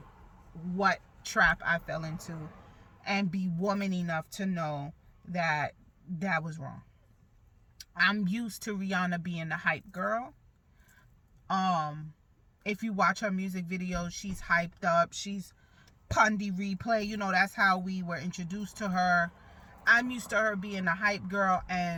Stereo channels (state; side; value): identical; both; correlation 1.00